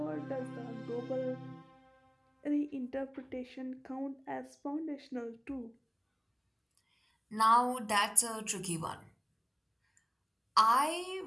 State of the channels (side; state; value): both; identical; correlation 1.00